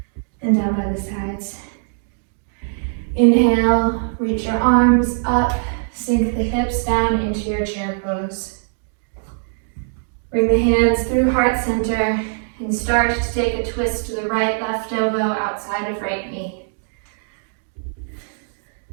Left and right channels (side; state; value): left; silent; digital silence